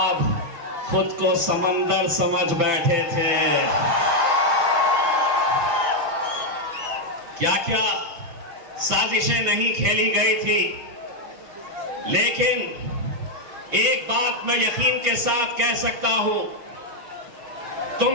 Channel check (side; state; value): left; late; 5.9 ms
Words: खुद को समंदर समझ बैठे थे। क्या क्या साजिशें नहीं खेली गई थी, लेकिन एक बात मैं यकीन के साथ कह सकता हूं,